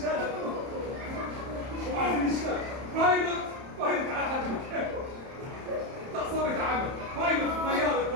وعايزين نشتغل. بايلوت. بايلوت على حد مكانه. تعصبت عمل. بايلوت طيارة.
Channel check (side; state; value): left; late; 31 ms